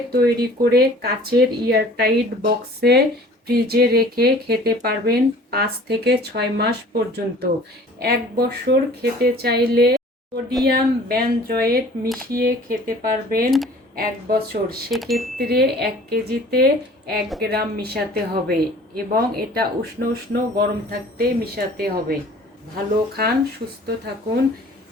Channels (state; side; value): normal; both; correlation 0.49